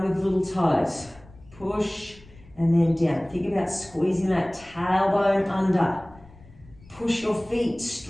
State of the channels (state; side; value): noise; left; rumble, 24 dB below the sound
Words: with little toes. Push and then down. Think about squeezing that tailbone under. Push your feet